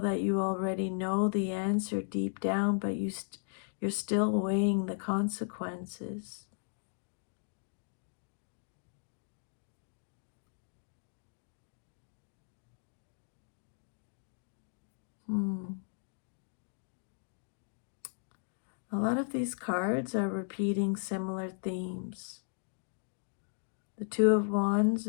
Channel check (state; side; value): silent; right; digital silence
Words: that you already know the answer deep down, but you're still weighing the consequences. A lot of these cards are repeating similar themes. The 2 of Wands